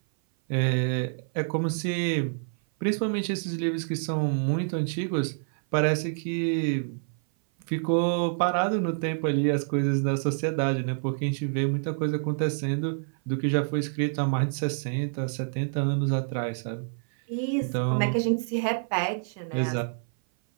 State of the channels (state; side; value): silent; left; 56 dB below the other